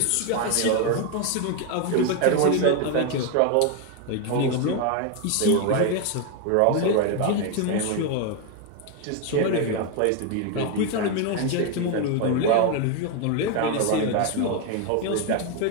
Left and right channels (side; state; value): both; different; correlation 0.01